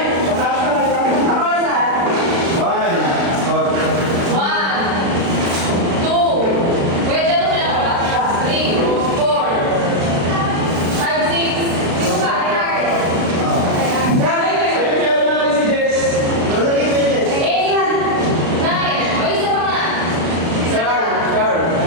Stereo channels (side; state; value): left; late; 36 ms